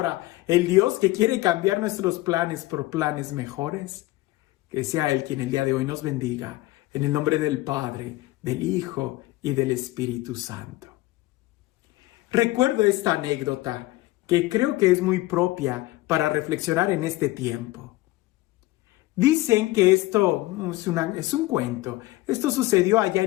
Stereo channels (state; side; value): quieter; right; 18.6 dB